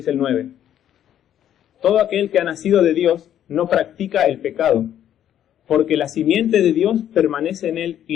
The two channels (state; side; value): quieter; right; 10.6 dB